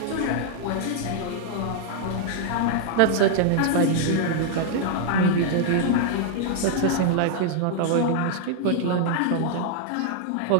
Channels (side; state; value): both; different; correlation -0.01